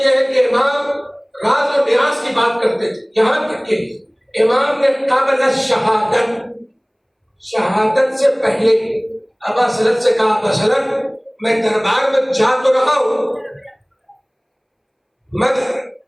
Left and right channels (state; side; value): identical; both; correlation 1.00